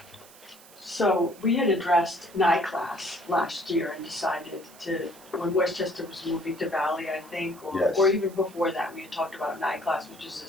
So we had addressed NICLAS last year and decided to, when Westchester was moving to Valley, I think, Yes. or even before that, we had talked about NICLAS, which is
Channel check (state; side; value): noise; right; hiss, 22 dB below the sound